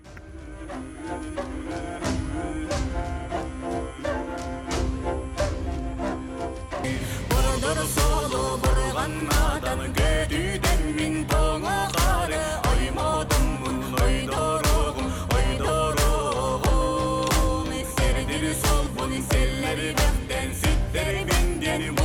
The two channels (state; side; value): identical; both; correlation 1.00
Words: Buradır solu burganmadan Gödüden min toğu karı Aymadım bunun oydoruğum Serdir sol bunu selleri bekten Sitleri benden